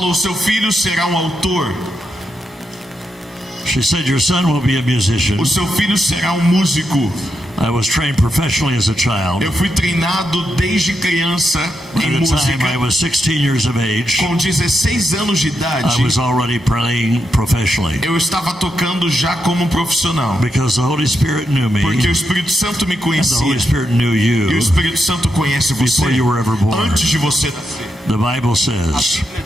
seu filho será um autor. She said, your son will be a musician. O seu filho será um músico. I was trained professionally as a child. Eu fui treinado desde criança By em the time I música. was 16 years of age, Com 16 anos de I idade, was already playing professionally eu estava tocando já como profissional. because the Holy Spirit knew me, Porque o Espírito Santo me and the Holy conhecia. Spirit knew E o you. Espírito Santo conhece você Before you were ever born. antes de você nascer. The Bible says,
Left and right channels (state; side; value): normal; both; correlation 0.84